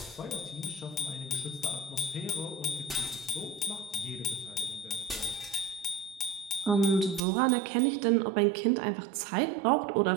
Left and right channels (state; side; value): drops out; left; at 7.2 s